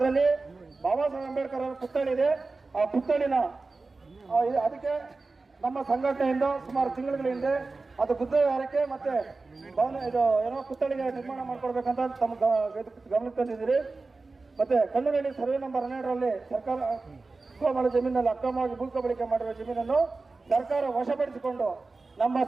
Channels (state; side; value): quieter; left; 3.7 dB